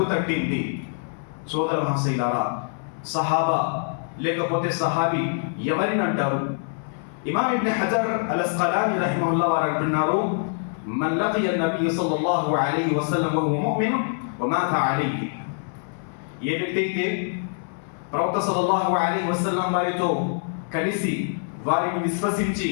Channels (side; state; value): right; silent; 62 dB below the other